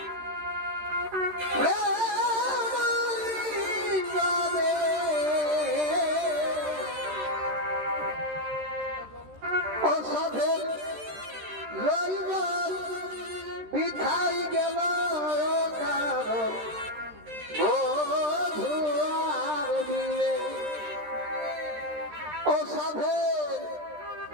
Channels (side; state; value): left; late; 13 ms